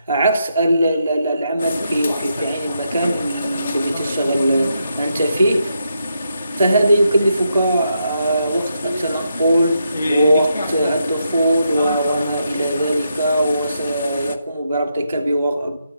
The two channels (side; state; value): both; inverted; correlation -0.81